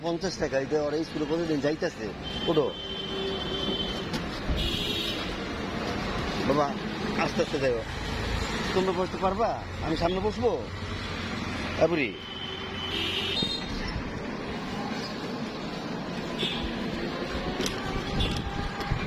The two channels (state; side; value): identical; both; correlation 1.00